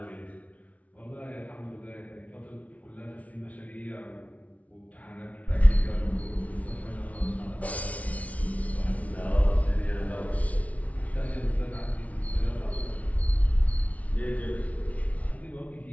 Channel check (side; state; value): right; late; 0.068 ms